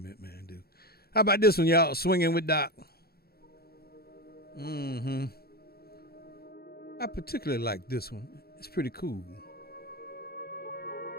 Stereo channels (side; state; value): right; late; 0.45 ms